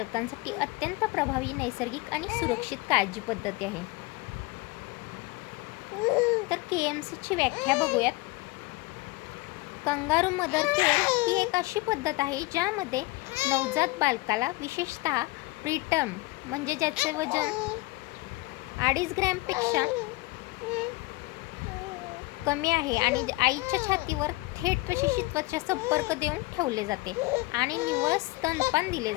अत्यंत प्रभावी, नैसर्गिक आणि सुरक्षित काळजी पद्धती आहे. तर KMCची व्याख्या बघूयात. कंगारू मदर केअर ही एक अशी पद्धत आहे ज्यामध्ये नवजात बालकाला, विशेषतः प्रीटर्म म्हणजे ज्याचे वजन 2.5 ग्रॅमपेक्षा कमी आहे आणि आईच्या छातीवर थेट प्रशिक्षितत्वाचा संपर्क देऊन ठेवले जाते आणि निव्वळ स्तनपान दिले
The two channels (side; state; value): right; quieter; 22.3 dB